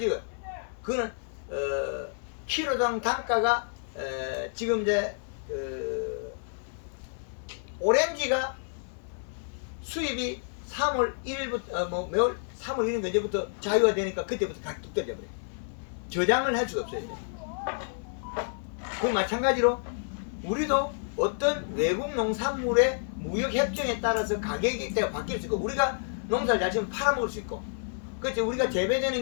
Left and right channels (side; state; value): right; silent; 58 dB below the other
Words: 그거는 키로당 단가가 지금 이제 오렌지가 수입이 3월 1일부터 매월 3월 1일 언제부터 자유화 되니까 그때부터 가격이 떨어져 버려요. 저장을 할 수가 없어요. 이제. 그 마찬가지로 우리도 어떤 외국 농산물의 무역 협정에 따라서 가격이 바뀔 수 있고, 우리가 농사를 잘 지으면 팔아먹을 수 있고, 그렇죠. 우리가 재배되는